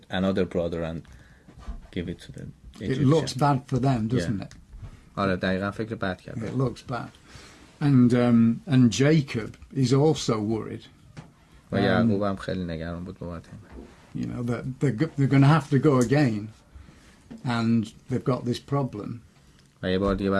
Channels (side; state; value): both; identical; correlation 1.00